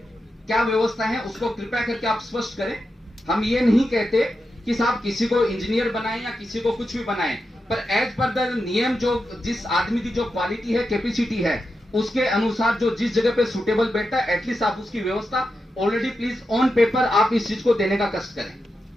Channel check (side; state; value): both; normal; correlation 0.88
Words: क्या व्यवस्था है उसको कृपया करके आप स्पष्ट करें। हम ये नहीं कहते कि साहब किसी को इंजीनियर बनाएं या किसी को कुछ भी बनाएं, पर एज पर द नियम जो जिस आदमी की जो क्वालिटी है, कैपेसिटी है, उसके अनुसार जो जिस जगह पे सुटेबल बैठता है, एटलीस्ट आप उसकी व्यवस्था ऑलरेडी प्लीज ऑन पेपर आप इस चीज को देने का कष्ट करें।